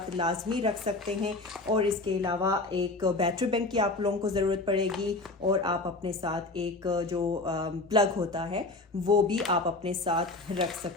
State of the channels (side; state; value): right; quieter; 3.2 dB